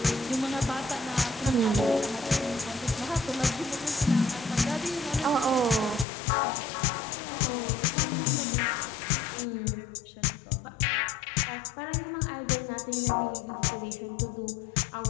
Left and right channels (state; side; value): drops out; right; at 6.1 s